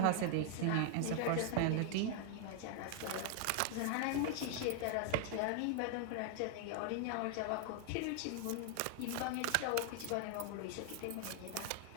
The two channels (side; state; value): both; different; correlation 0.00